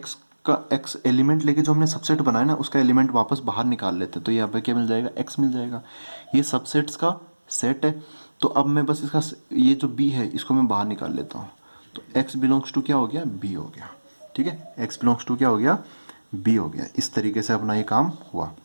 का एक्स एलिमेंट लेके जो हमने सबसेट बनाया ना, उसका एलिमेंट वापस बाहर निकाल लेते हैं। तो यहाँ पे क्या मिल जाएगा, एक्स मिल जाएगा। ये सबसेट्स का सेट है। तो अब मैं बस इसका ये जो बी है इसको मैं बाहर निकाल लेता हूँ। तो एक्स बिलोंग्स टू क्या हो गया, बी हो गया। ठीक है, एक्स बिलोंग्स टू क्या हो गया, बी हो गया। इस तरीके से अपना ये काम हुआ।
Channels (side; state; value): both; inverted; correlation -1.00